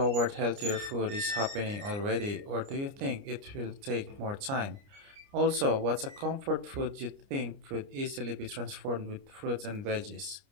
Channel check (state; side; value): late; left; 29 ms